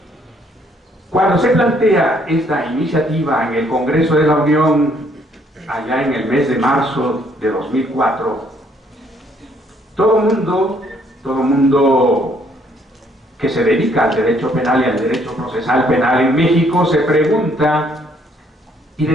Cuando se plantea esta iniciativa en el Congreso de la Unión, allá en el mes de marzo de 2004, todo mundo que se dedica al derecho penal y al derecho procesal penal en México se pregunta: ¿y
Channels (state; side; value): normal; both; correlation 0.66